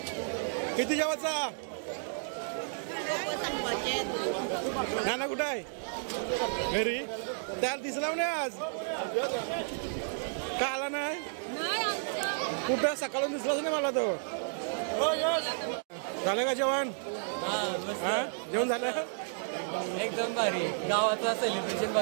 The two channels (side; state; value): left; silent; digital silence